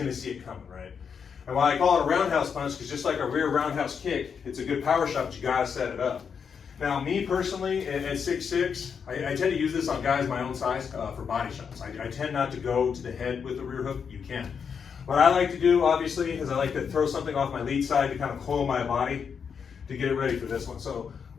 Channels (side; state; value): right; quieter; 6.6 dB